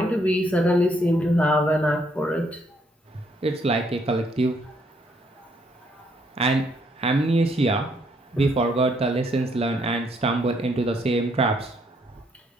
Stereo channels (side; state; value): both; normal; correlation 0.70